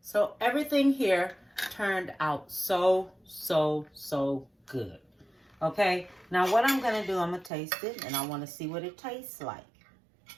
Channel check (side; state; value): left; drops out; at 7.5 s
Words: So everything here turned out so good. Okay, now what I'm gonna do, I'm gonna taste it, and I wanna see what it tastes like.